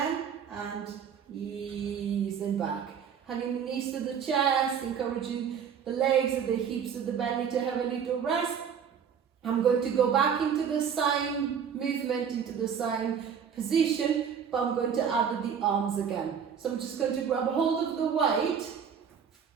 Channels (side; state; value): left; quieter; 7.5 dB